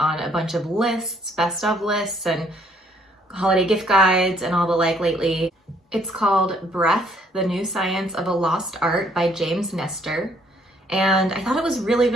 a bunch of lists, best of lists, and holiday gift guides and all the like lately. It's called Breath, The New Science of a Lost Art by James Nestor. And I thought it was really,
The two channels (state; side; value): normal; both; correlation 0.65